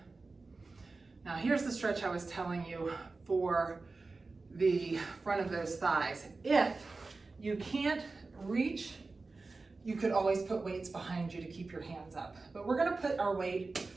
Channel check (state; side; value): quieter; left; 3.7 dB